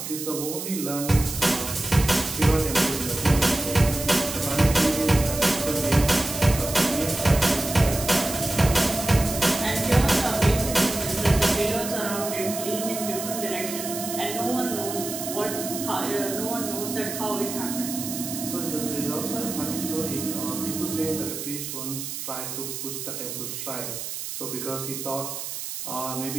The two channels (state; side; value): noise; right; hiss, 7 dB below the sound